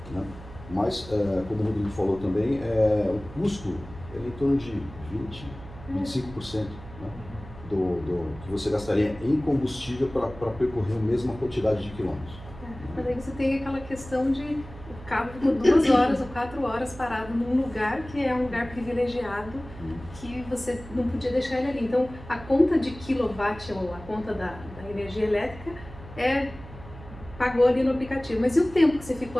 Né? Mas, como o Rodrigo falou também, o custo é em torno de 25%, né, do que você gastaria em combustível para percorrer a mesma quantidade de quilômetros. Mas aí você tem aquela questão de o carro ficou 2 horas ou 4 horas parado num lugar que é um lugar privilegiado, que você não podia deixar ele ali. Então, a conta de quilowatt ou a conta da energia elétrica pagou ali no aplicativo. Mas e o tempo que você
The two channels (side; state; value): right; noise; hum, 16 dB below the sound